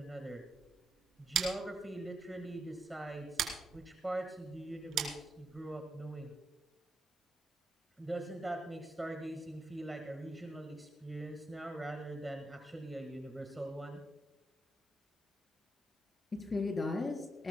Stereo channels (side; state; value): both; normal; correlation 0.81